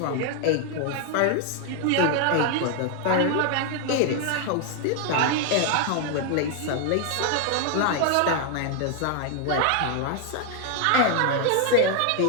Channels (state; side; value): different; both; correlation 0.00